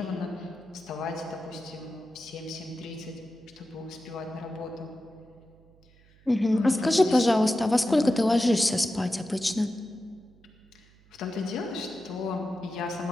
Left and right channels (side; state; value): right; noise; hum, 28 dB below the sound